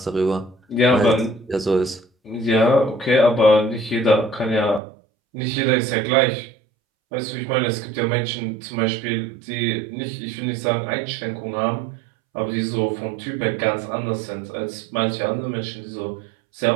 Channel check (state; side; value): drops out; left; at 4.8 s